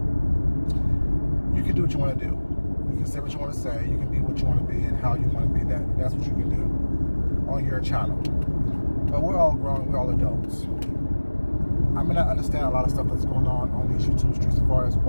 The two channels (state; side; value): inverted; both; correlation -1.00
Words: You can do what you want to do. You can say what you want to say. You can be what you want to be and how you want to be that. That's what you can do on your channel. But we're all grown. We're all adults. I may not understand a lot of stuff that's going on these YouTube streets as far as